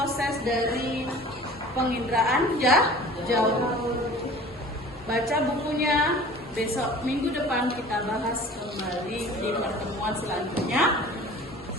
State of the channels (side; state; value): both; normal; correlation 0.44